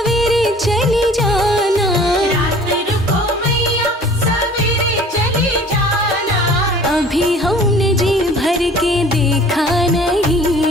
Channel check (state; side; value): normal; both; correlation 0.49